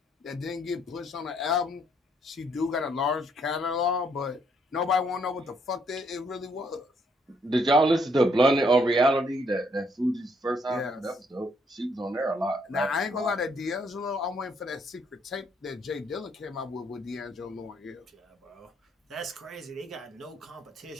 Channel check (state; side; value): normal; both; correlation 0.70